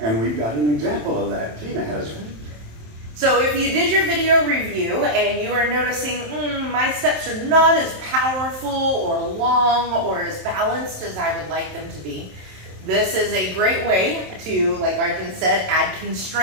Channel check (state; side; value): late; left; 27 ms